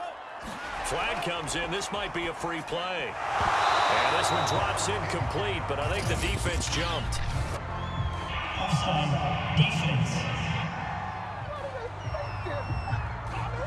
Flag comes in. This might be a free play. And this one drops incomplete, but I think the defense jumped. Offside defense.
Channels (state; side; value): identical; both; correlation 1.00